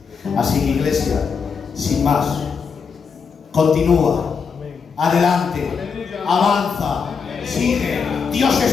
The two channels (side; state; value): right; quieter; 5.9 dB